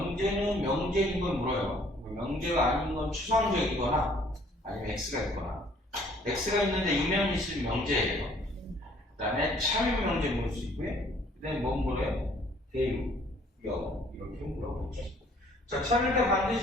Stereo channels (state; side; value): normal; both; correlation 0.59